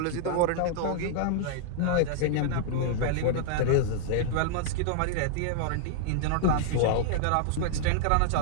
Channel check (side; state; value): both; different; correlation -0.01